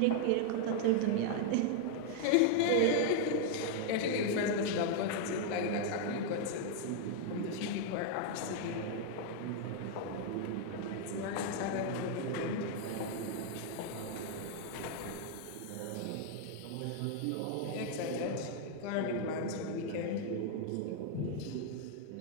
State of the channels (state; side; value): different; both; correlation 0.00